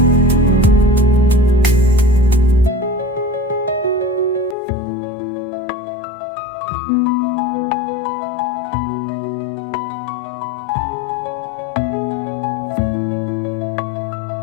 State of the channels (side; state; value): right; drops out; at 4.5 s